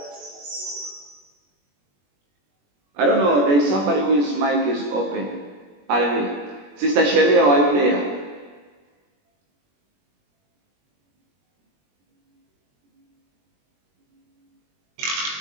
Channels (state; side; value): late; left; 21 ms